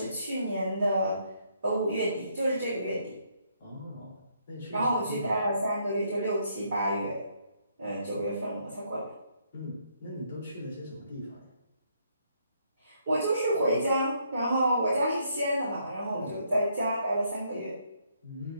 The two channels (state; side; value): inverted; both; correlation -0.72